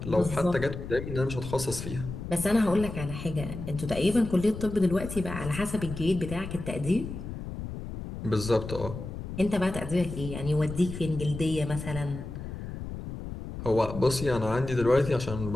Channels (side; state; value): left; noise; rumble, 8 dB below the sound